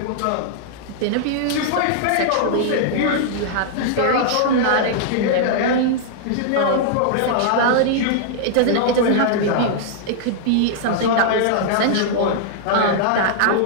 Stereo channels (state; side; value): different; both; correlation -0.01